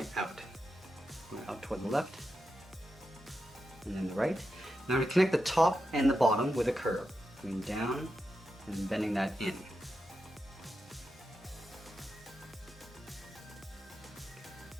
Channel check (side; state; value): both; normal; correlation 0.88